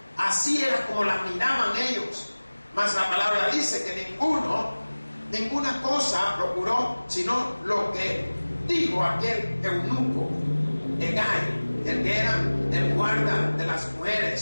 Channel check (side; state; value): both; inverted; correlation -1.00